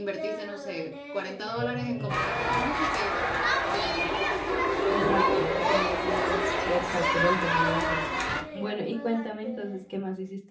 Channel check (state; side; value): identical; both; correlation 1.00